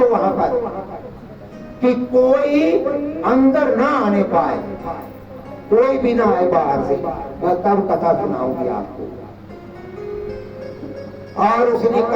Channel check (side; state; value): both; identical; correlation 1.00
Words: वहां पर, कि कोई अंदर ना आने पाए, कोई भी ना आए बाहर से, मैं तब कथा सुनाऊंगी आपको। और उसने